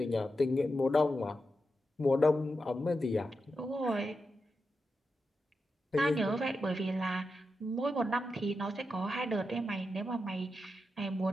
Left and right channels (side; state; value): both; normal; correlation 0.88